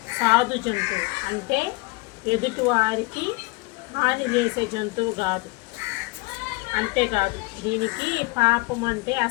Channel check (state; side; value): quieter; right; 24.8 dB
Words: సాధు జంతువు. అంటే ఎదుటి వారికి హాని చేసే జంతువు కాదు. అంతేకాదు, దీనికి పాపం అంటే